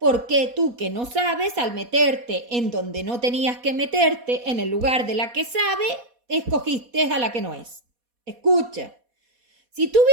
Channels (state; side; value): late; left; 4.2 ms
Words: tú que no sabes, al meterte en donde no tenías que meterte, en el lugar de la que sabe, escogiste a la que no es. Escucha, si tú